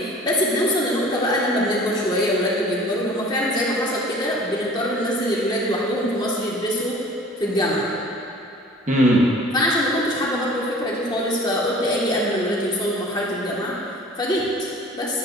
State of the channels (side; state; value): both; normal; correlation 0.47